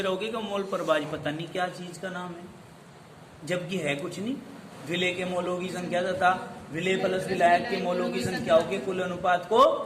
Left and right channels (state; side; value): identical; both; correlation 1.00